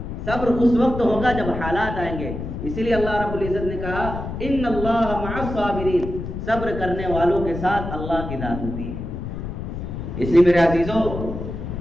صبر اس وقت ہوگا جب حالات آئیں گے۔ اسی لیے اللہ رب العزت نے کہا ان اللہ مع الصابرین، صبر کرنے والوں کے ساتھ اللہ کی ذات ہوتی ہے۔ اس لیے میرے عزیزو،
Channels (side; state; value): left; noise; rumble, 6 dB below the sound